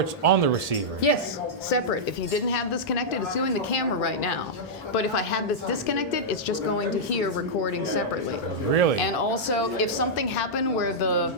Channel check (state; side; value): noise; right; hum, 30 dB below the sound